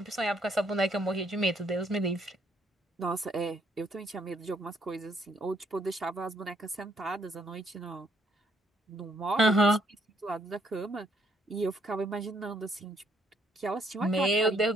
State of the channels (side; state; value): both; normal; correlation 0.69